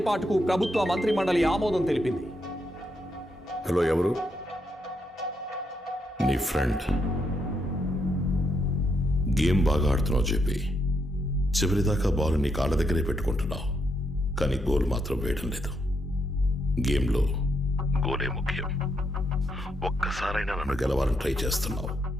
ప్రభుత్వ మంత్రి మండలి ఆమోదం తెలిపింది. హలో, ఎవరు? నీ ఫ్రెండ్. గేమ్ బాగా ఆడుతున్నావు చెప్పి చివరిదాకా బాల్ నీ కాళ్ళ దగ్గరే పెట్టుకుంటున్నావు, కానీ గోల్ మాత్రం వేయడం లేదు. గేమ్లో గోలే ముఖ్యం. ఒక్కసారైనా నన్ను గెలవాలని ట్రై చేస్తున్నావు,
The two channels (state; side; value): normal; both; correlation 0.78